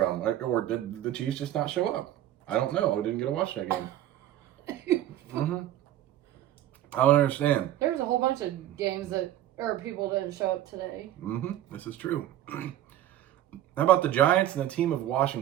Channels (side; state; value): left; quieter; 12.8 dB